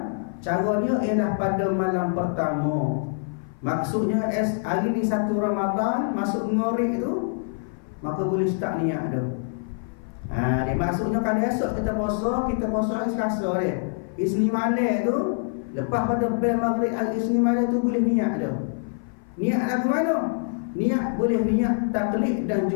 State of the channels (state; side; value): silent; right; 56 dB below the other